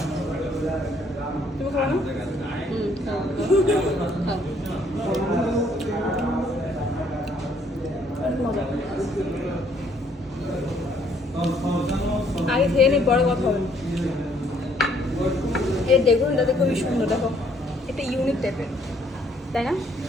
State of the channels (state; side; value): normal; both; correlation 0.66